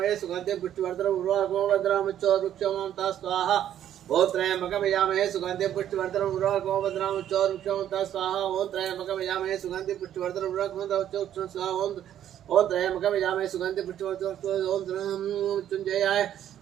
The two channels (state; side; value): quieter; left; 10.8 dB